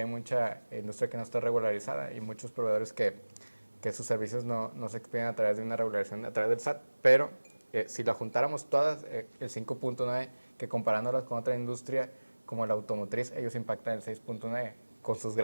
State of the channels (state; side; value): inverted; both; correlation -1.00